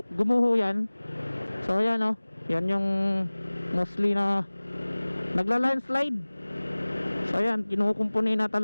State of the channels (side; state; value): both; inverted; correlation -1.00